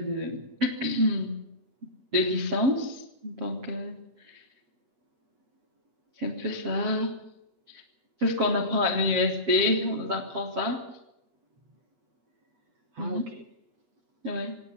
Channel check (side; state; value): left; late; 7.6 ms